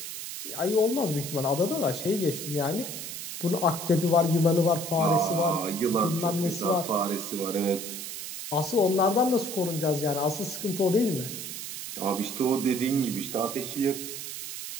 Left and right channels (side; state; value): right; noise; hiss, 8 dB below the sound